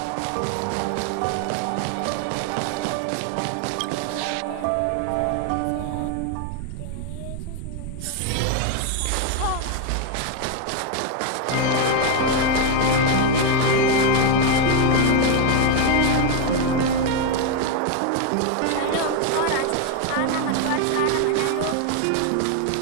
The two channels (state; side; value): different; both; correlation 0.01